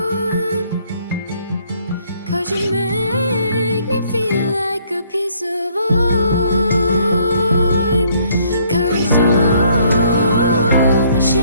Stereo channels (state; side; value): inverted; both; correlation -0.64